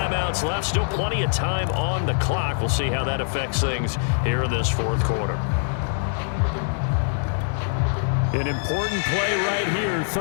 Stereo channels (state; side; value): silent; right; digital silence